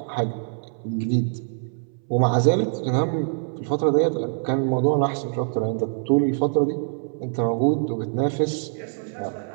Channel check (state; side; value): silent; left; 62 dB below the other